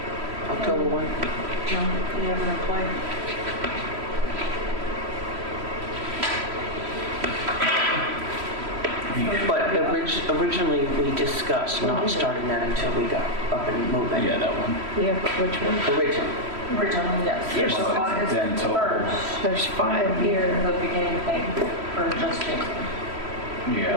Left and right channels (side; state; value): left; late; 3.1 ms